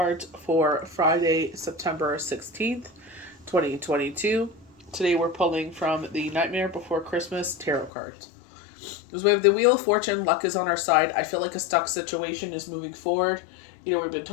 for Friday, September 16th, 2022. Today we're pulling from the Nightmare Before Christmas tarot cards. Because we have the Wheel of Fortune, luck is on our side. I feel like a stuck situation is moving forward. We've been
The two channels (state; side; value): drops out; right; at 7.9 s